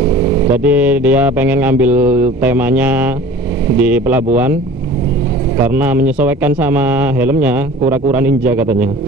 Jadi dia pengen ngambil temanya di pelabuhan karena menyesuaikan sama helmnya, kura-kura ninja katanya.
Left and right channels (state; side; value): normal; both; correlation 0.43